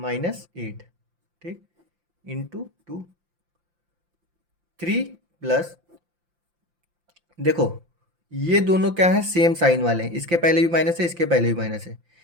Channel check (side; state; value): left; late; 5.8 ms